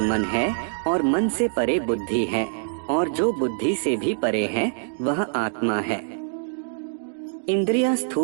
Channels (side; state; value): left; silent; digital silence